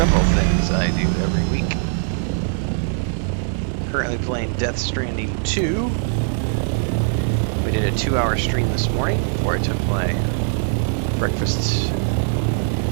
things I do every week. Currently playing Death Stranding 2. We did a 2-hour stream this morning before I took my breakfast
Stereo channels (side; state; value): left; silent; 65 dB below the other